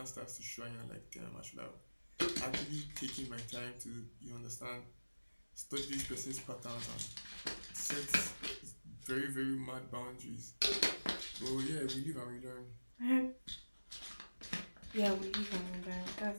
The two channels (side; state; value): both; inverted; correlation -1.00